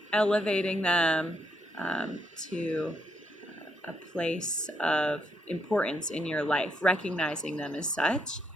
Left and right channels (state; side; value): normal; both; correlation 0.77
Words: Elevating them to a place of importance in your life, recognizing them as such,